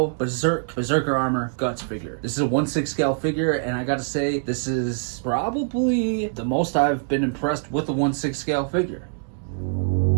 Berserker Armor Guts figure. This is a 1/6 scale figure, and I gotta say, this is probably the most I've been impressed with a 1/6 scale figure.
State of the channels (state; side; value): silent; left; digital silence